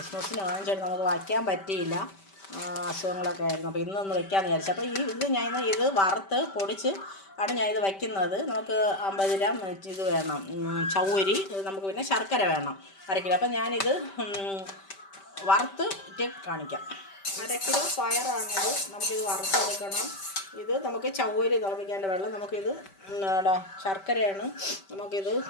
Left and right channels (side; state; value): right; late; 5.1 ms